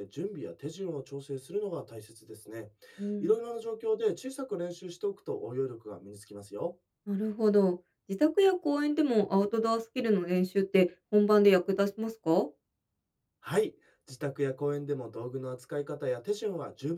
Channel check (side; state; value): both; identical; correlation 1.00